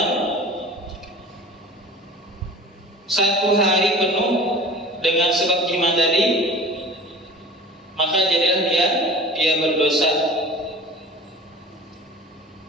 1 hari penuh dengan sebab jima tadi, maka jadilah dia berdosa.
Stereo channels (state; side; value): normal; both; correlation 0.39